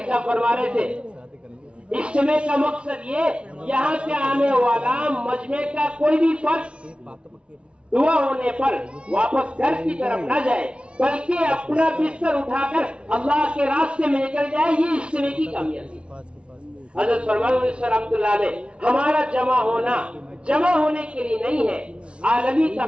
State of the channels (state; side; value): late; left; 0.058 ms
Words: کا فرما رہے تھے، اجتماع کا مقصد یہ یہاں سے آنے والا مجمع کا کوئی بھی فرد دعا ہونے پر واپس گھر کی طرف نہ جائے بلکہ اپنا بستر اٹھا کر اللہ کے راستے میں نکل جائے۔ یہ اجتماع کی کامیابی۔ حضرت فرمان رحمۃ اللہ علیہ ہمارا جمع ہونے کے لیے نہیں ہے، عالمی